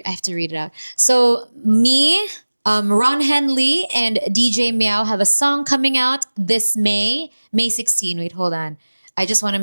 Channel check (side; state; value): both; inverted; correlation -1.00